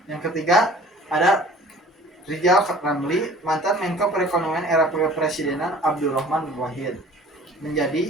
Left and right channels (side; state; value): both; normal; correlation 0.48